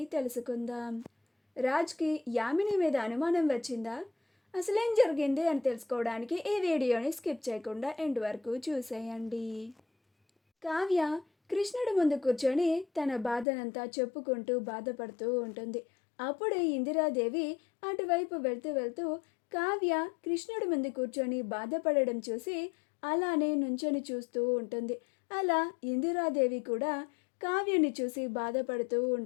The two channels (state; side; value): drops out; right; at 13.5 s